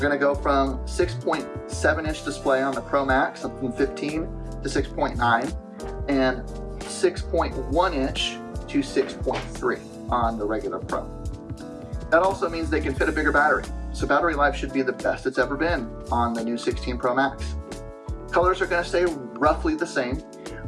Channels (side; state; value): both; identical; correlation 1.00